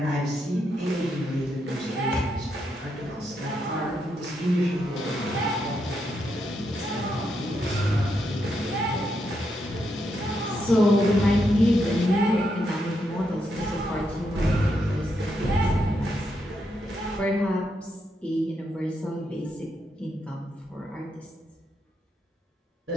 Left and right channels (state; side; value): normal; both; correlation 0.80